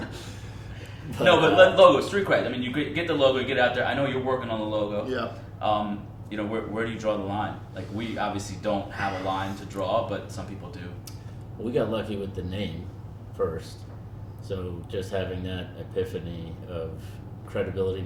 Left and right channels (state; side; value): identical; both; correlation 1.00